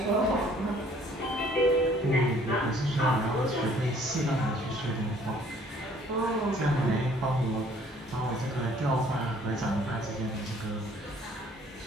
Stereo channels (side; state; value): both; normal; correlation 0.58